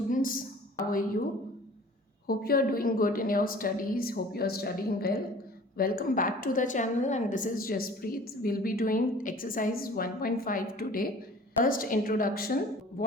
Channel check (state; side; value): normal; both; correlation 0.46